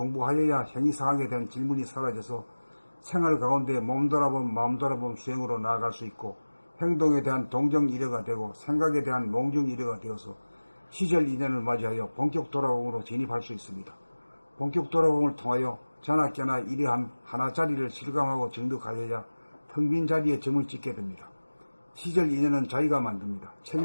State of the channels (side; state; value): both; inverted; correlation -1.00